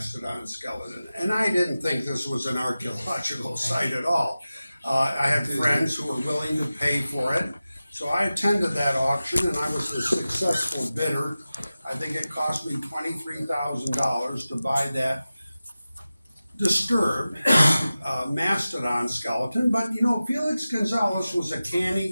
skeleton, and I didn't think this was an archaeological site at all. I had friends who were willing to pay for it. So I attended that auction and I was the successful bidder. I think it cost me $23,000 to buy that disturbed mastodon skeleton. But you know, Felix Gonzalez was a canny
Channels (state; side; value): inverted; both; correlation -0.95